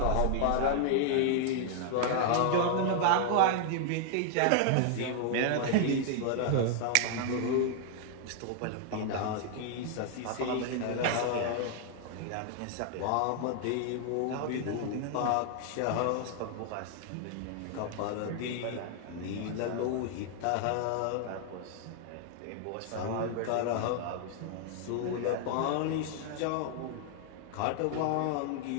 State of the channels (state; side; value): different; both; correlation 0.00